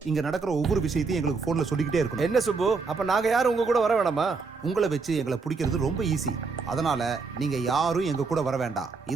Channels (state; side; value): quieter; left; 4.6 dB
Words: இங்க நடக்கிற ஒவ்வொரு விஷயத்தையும் எங்களுக்கு போன்ல சொல்லிக்கிட்டே இருக்கணும். என்ன சுப்பு, அப்ப நாங்க யாரும் உங்க கூட வர வேணாமா? உங்களை வச்சு எங்களை பிடிக்கிறது ரொம்ப ஈஸி. அதனால நீங்க யாரும் எங்க கூட வர வேண்டாம்.